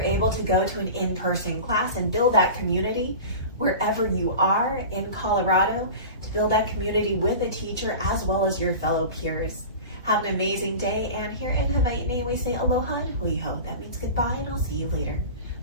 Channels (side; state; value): both; inverted; correlation -0.33